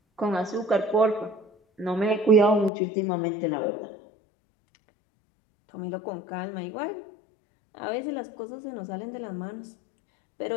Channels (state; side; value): drops out; right; at 2.7 s